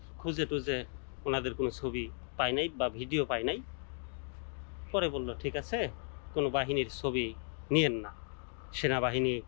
খুঁজে টুজে ওনাদের কোনো ছবি পায় নাই বা ভিডিও পায় নাই। পরে বলল ঠিক আছে, কোনো বাহিনীর ছবি নিয়েন না, সেনাবাহিনী,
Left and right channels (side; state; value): right; silent; 54 dB below the other